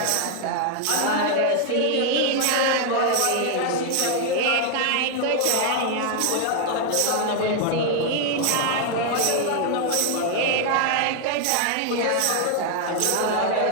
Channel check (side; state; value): both; different; correlation 0.00